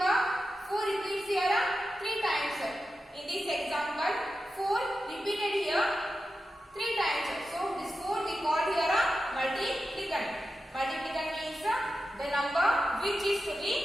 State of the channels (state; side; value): normal; both; correlation 0.91